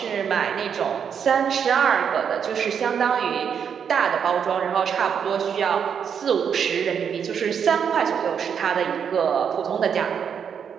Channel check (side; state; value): left; quieter; 7.5 dB